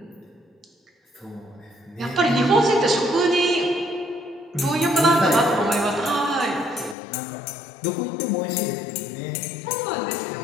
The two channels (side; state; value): right; drops out; at 7.0 s